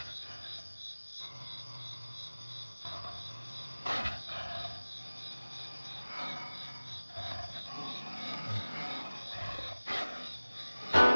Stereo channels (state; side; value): inverted; both; correlation -1.00